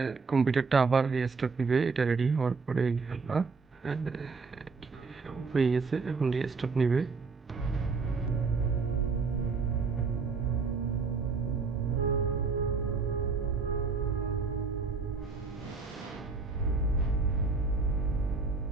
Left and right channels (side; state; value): left; quieter; 4.6 dB